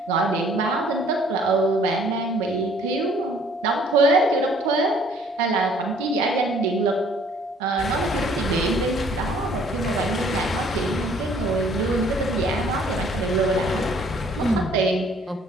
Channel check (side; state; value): both; normal; correlation 0.58